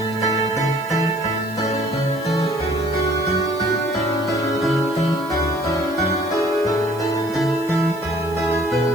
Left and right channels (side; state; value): right; noise; hiss, 21 dB below the sound